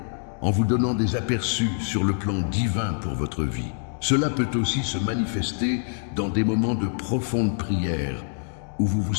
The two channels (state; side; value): silent; right; 61 dB below the other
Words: en vous donnant des aperçus sur le plan divin pour votre vie. Cela peut aussi se manifester dans des moments de profonde prière, où vous vous